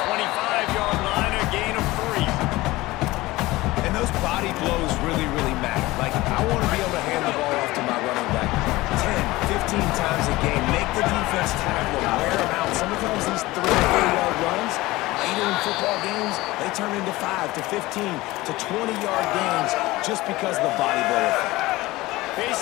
25-yard line, a gain of 3. And those body blows really, really matter. Like, I want to be able to hand the ball off to my running back 10, 15 times a game. Make the defense tackle them, wear them out. Sometimes these 3- or 4-yard runs, later in football games, they turn into 5 to 15 to 20-yard gains just because of the body blow effect.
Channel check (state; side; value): quieter; right; 19.4 dB